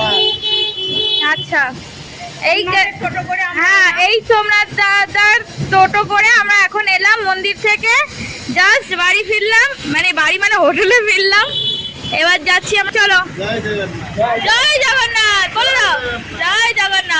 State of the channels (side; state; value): both; identical; correlation 1.00